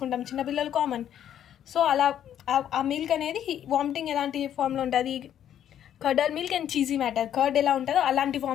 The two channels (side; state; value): right; quieter; 10.3 dB